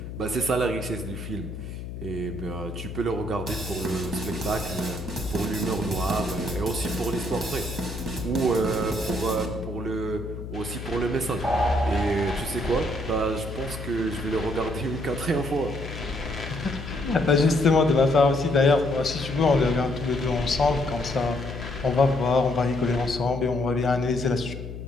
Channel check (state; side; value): noise; left; hum, 9 dB below the sound